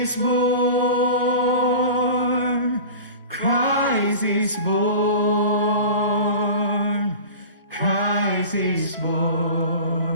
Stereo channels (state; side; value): inverted; both; correlation -0.36